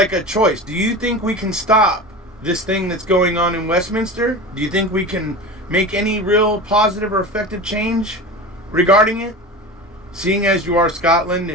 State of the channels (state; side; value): normal; both; correlation 0.30